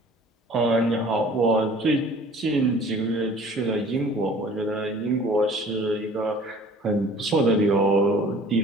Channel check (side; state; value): both; normal; correlation 0.49